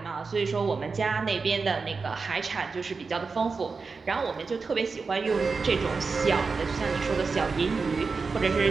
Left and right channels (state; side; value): quieter; left; 4.6 dB